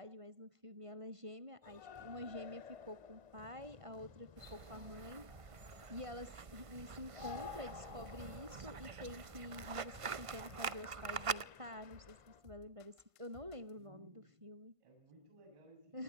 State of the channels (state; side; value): late; left; 1.5 ms